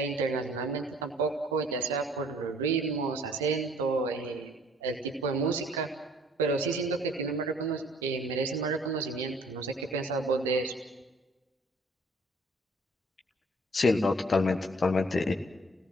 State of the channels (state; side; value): normal; both; correlation 0.57